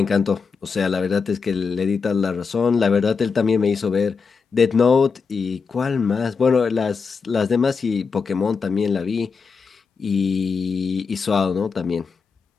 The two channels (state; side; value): quieter; right; 5.2 dB